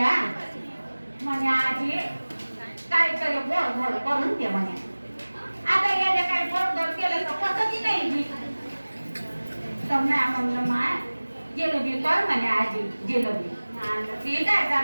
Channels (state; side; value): inverted; both; correlation -1.00